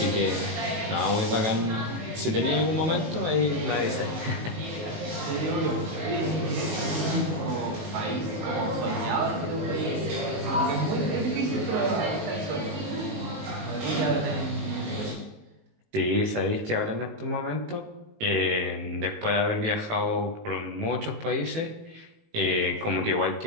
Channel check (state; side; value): late; left; 19 ms